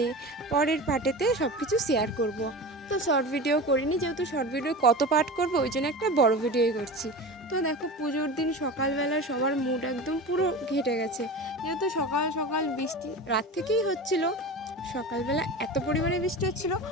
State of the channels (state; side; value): normal; both; correlation 0.30